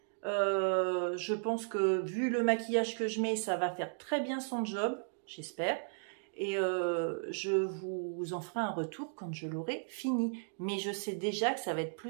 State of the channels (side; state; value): left; silent; digital silence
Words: Je pense que vu le maquillage que je mets, ça va faire très bien son job, j'espère. Et je vous en ferai un retour quand je l'aurai fini. Mais je sais déjà que ça va être